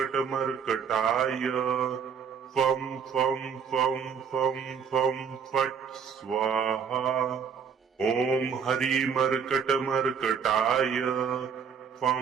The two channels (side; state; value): left; quieter; 6.8 dB